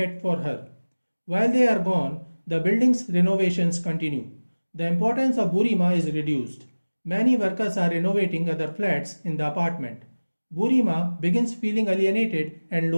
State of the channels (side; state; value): both; inverted; correlation -1.00